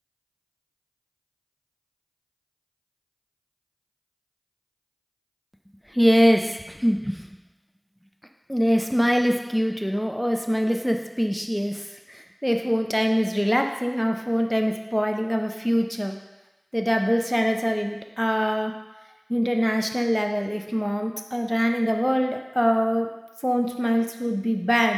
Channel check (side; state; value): both; identical; correlation 1.00